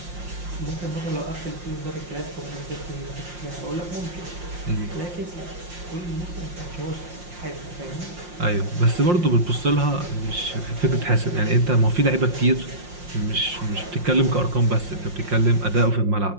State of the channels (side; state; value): left; late; 5.6 ms